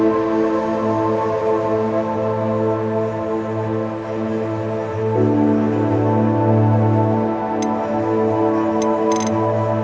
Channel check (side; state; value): both; identical; correlation 1.00